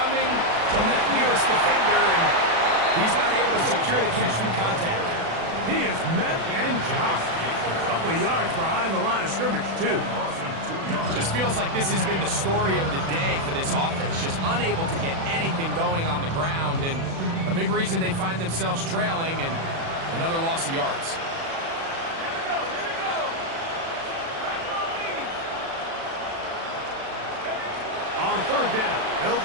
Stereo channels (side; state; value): left; late; 36 ms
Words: from that nearest defender, and he's not able to secure the catch through contact. He is met and dropped. A couple of yards behind the line of scrimmage, too. Just feels like this has been the story of the day for this offense. Just unable to get anything going on the ground, and a big reason they find themselves trailing, and another loss of yards. On 3rd down, they'll